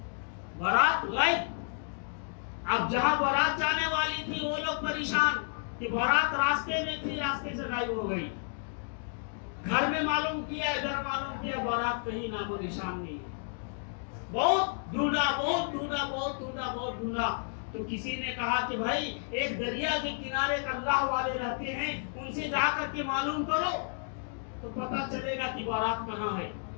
بارات گئی. اب جہاں بارات جانے والی تھی وہ لوگ پریشان کہ بارات راستے میں تھی, راستے سے غائب ہو گئی. گھر میں معلوم کیا, ادھر معلوم کیا, بارات کہیں نام و نشان نہیں ہے. بہت ڈھونڈا, بہت ڈھونڈا, بہت ڈھونڈا, بہت ڈھونڈا. تو کسی نے کہا کہ بھائی ایک دریا کے کنارے اللہ والے رہتے ہیں, ان سے جا کر کے معلوم کرو تو پتہ چلے گا کہ بارات کہاں ہے.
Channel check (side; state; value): right; silent; 57 dB below the other